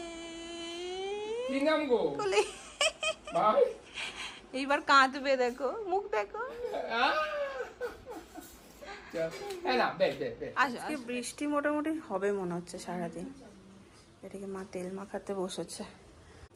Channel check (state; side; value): identical; both; correlation 1.00